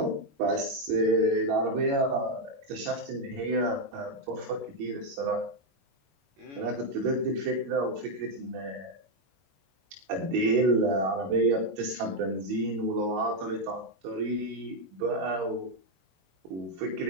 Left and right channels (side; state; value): left; late; 21 ms